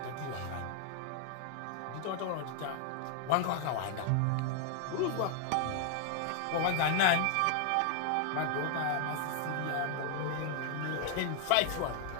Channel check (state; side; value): different; both; correlation 0.00